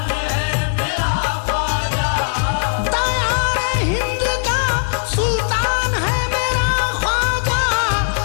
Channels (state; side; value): silent; right; 67 dB below the other